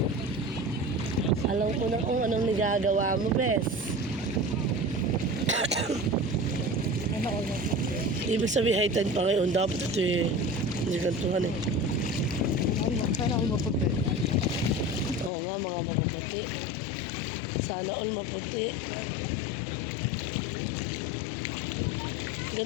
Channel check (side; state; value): right; drops out; at 15.3 s